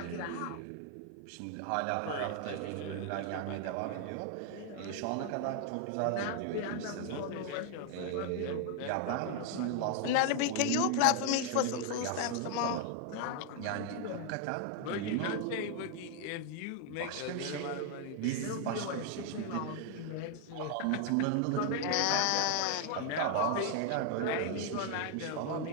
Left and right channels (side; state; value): both; different; correlation 0.00